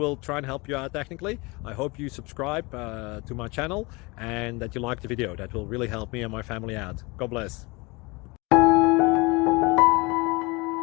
try and help you out technically. I hope you subscribe to my channel and that you like the video. That will really help me and my family out. God bless.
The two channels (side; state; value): right; quieter; 25.8 dB